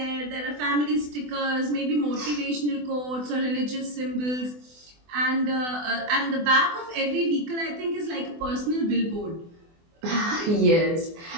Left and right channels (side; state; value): left; late; 24 ms